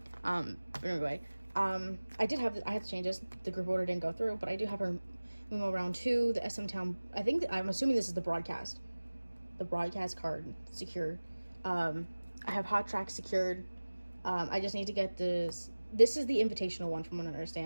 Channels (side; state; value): both; inverted; correlation -1.00